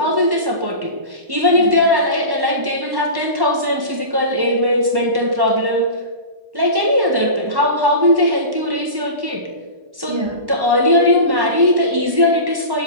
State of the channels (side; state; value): left; late; 1.1 ms